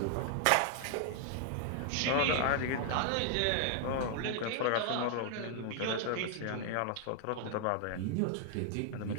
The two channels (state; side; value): different; both; correlation 0.00